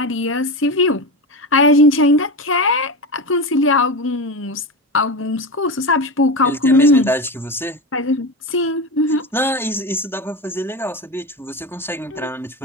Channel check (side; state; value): both; normal; correlation 0.21